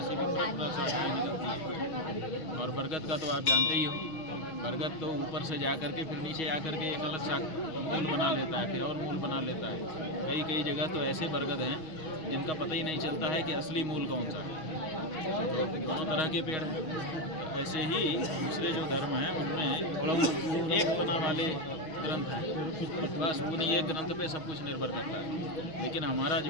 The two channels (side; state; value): right; late; 6.3 ms